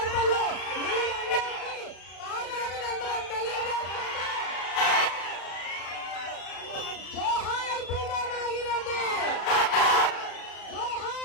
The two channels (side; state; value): right; late; 35 ms